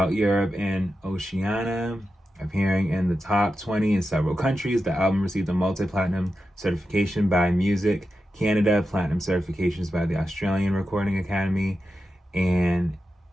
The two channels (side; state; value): both; normal; correlation 0.90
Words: Europe and Oceania, appearing in the top 20 in several countries. The album received a multi-platinum certification by Music Canada, platinum certifications by the Australian Recording Academy, and